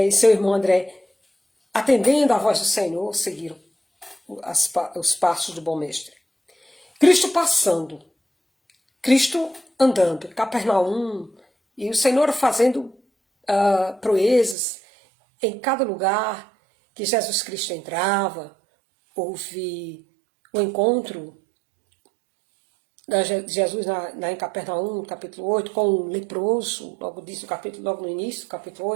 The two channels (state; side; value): drops out; left; at 14.6 s